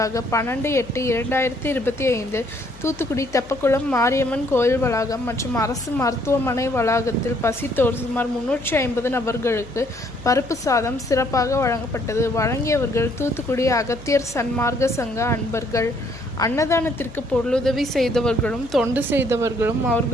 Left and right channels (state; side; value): noise; left; hum, 20 dB below the sound